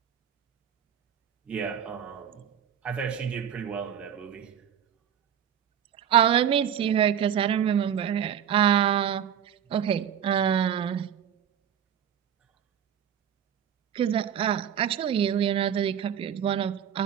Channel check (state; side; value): quieter; left; 9.0 dB